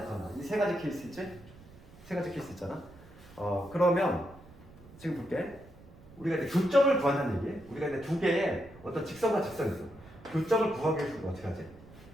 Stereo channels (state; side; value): noise; right; rumble, 21 dB below the sound